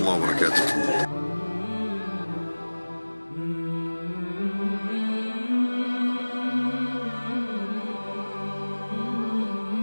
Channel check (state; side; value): inverted; both; correlation -1.00